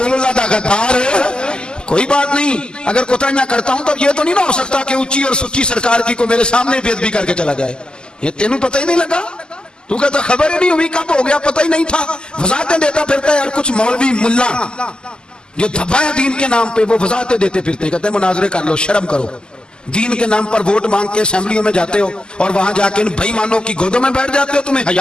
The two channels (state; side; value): late; right; 0.047 ms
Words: اللہ دا غدار ہے. کوئی بات نہیں, اگر کوتاہیاں کرتا ہوں تو یہ تو نہیں نہ ہو سکتا کہ اونچی اور سچی سرکار کی کو میرے سامنے بے ادبی کر کے چلا جائے. یہ تینوں پتہ ہی نہیں لگا, تو کہتا خبر ہی نہیں ہوئی, کب ہو گیا پتہ ہی نہیں تھا. وضاحتیں دیتا پھرتا ہے یار, کچھ مولوی ملا جو دھبا ہے دین کے نام پہ وہ وضاحتیں دیتے پھرتے ہیں, کہتے ہیں مناظرے کر لو, شرم کرو. دین کے نام پر ووٹ مانگ کے اسمبلیوں میں جاتے ہو اور وہاں جا کے ان بے ایمانوں کی گودوں میں بیٹھ جاتے ہو, تمہیں